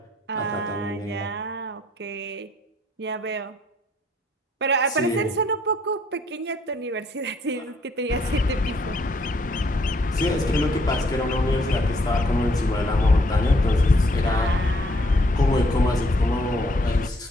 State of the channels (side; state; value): both; normal; correlation 0.67